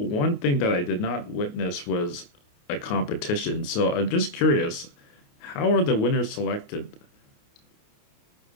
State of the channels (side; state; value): right; late; 28 ms